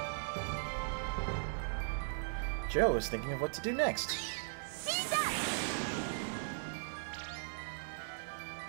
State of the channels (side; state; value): left; silent; digital silence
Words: Joe is thinking of what to do next.